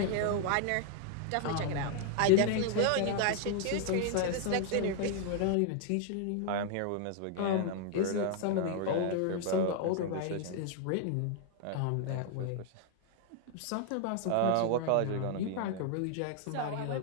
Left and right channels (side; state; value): both; different; correlation 0.00